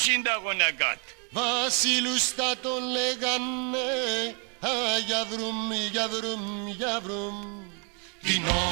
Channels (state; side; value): quieter; left; 37.8 dB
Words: είναι τα γονακάτ? Βασίλους θα τον λέγανε, α, για βρούμ, για βρούμ, για βρούμ. Την